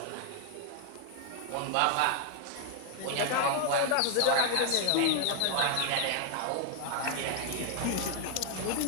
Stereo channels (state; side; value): different; both; correlation 0.00